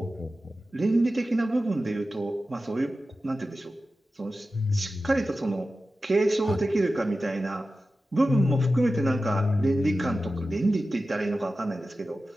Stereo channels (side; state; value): both; normal; correlation 0.94